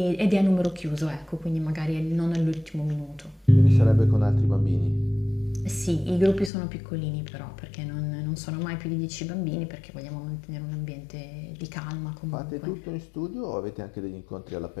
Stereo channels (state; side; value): drops out; right; at 6.5 s